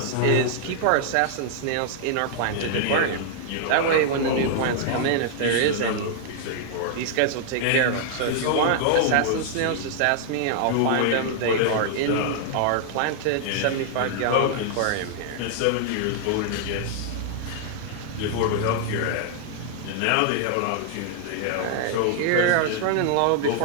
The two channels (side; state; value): both; different; correlation -0.01